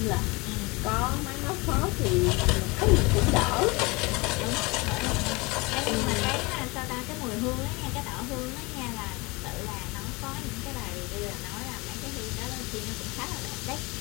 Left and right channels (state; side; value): quieter; right; 25.5 dB